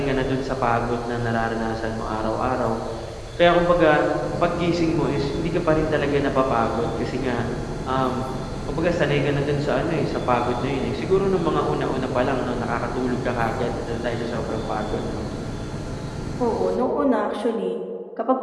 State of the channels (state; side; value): identical; both; correlation 1.00